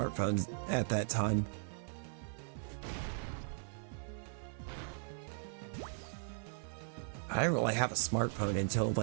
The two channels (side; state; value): left; silent; 52 dB below the other